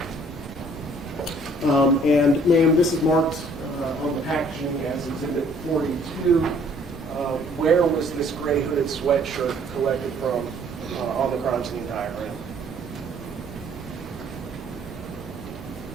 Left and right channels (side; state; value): both; normal; correlation 0.59